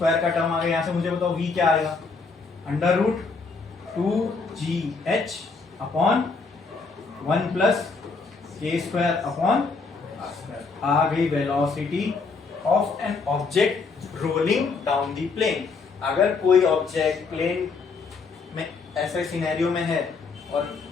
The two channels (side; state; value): right; quieter; 4.5 dB